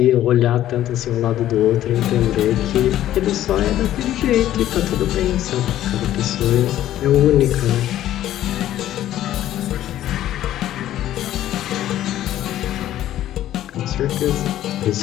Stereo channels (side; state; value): right; quieter; 12.8 dB